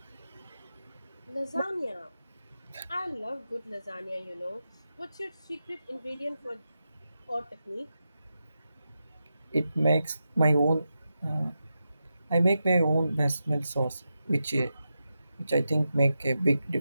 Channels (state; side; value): inverted; both; correlation -0.89